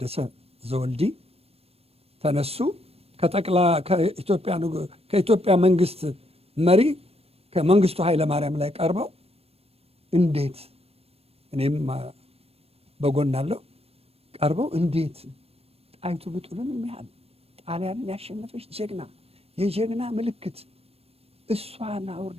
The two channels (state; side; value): late; left; 0.29 ms